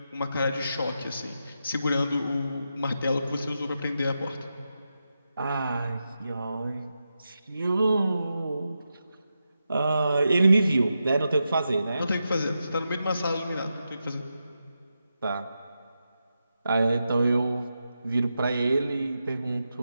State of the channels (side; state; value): both; inverted; correlation -0.88